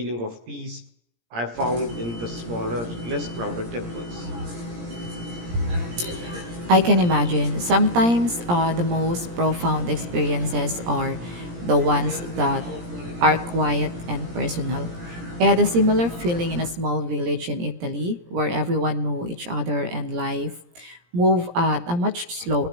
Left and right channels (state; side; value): late; left; 17 ms